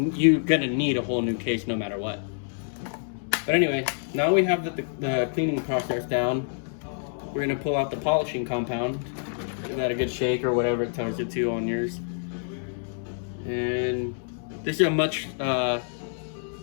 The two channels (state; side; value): silent; right; digital silence